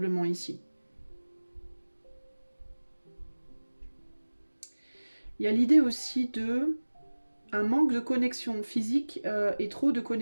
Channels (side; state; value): both; inverted; correlation -1.00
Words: ici. Il y a l'idée aussi de un manque de connexion physique et trop de